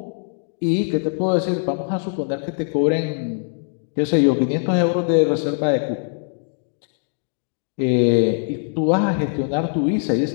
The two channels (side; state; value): right; silent; digital silence